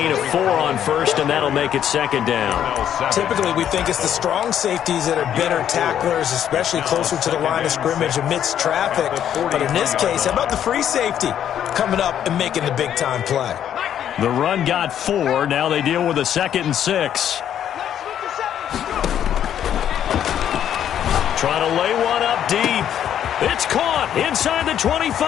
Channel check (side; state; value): right; quieter; 10.0 dB